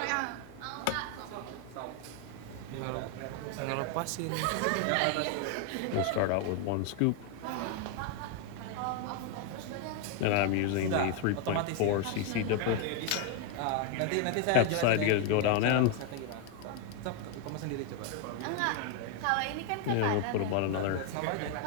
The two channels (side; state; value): both; different; correlation 0.01